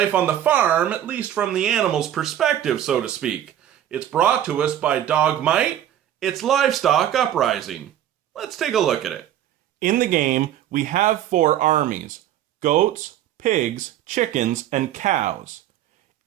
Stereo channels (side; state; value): left; quieter; 11.4 dB